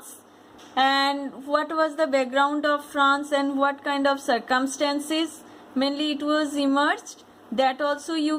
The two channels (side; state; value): both; identical; correlation 1.00